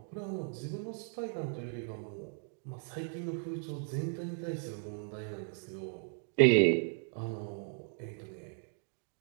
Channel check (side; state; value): left; silent; 54 dB below the other